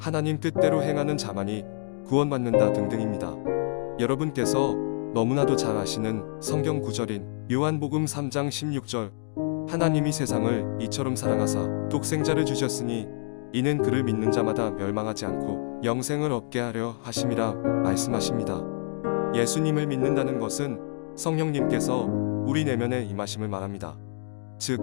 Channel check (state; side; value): silent; right; digital silence